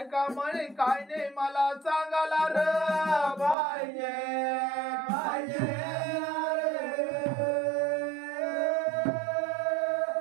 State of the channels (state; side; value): drops out; left; at 3.6 s